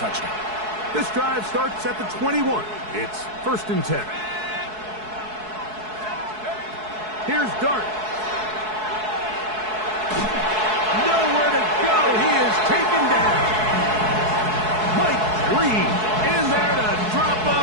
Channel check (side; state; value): left; late; 4.7 ms